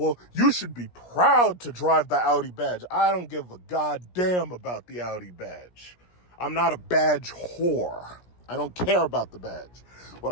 you should be proud to drive the Audi badge. I don't give a goddamn about the Audi badge. I'm not a badge whore. I don't care about the badge. What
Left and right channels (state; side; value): late; right; 17 ms